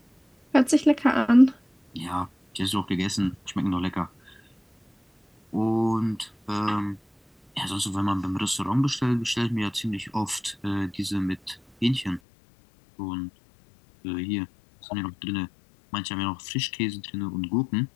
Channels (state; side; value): drops out; right; at 12.2 s